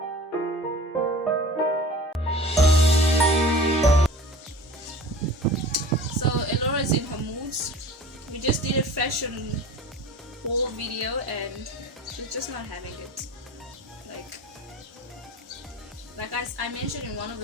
In her moods. We just did a fashion haul video and she's just not having it. Like I mentioned in one of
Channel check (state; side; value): normal; both; correlation 0.40